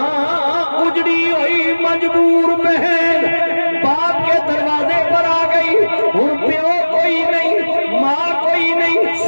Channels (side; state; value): both; inverted; correlation -1.00